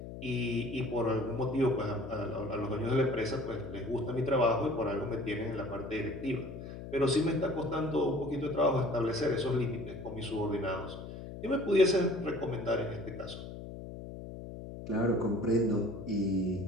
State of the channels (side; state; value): left; noise; hum, 10 dB below the sound